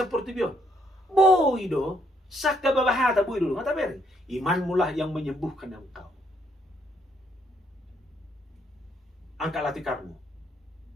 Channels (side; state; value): both; normal; correlation 0.71